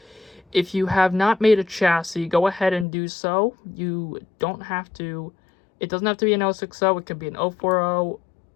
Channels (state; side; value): drops out; right; at 2.9 s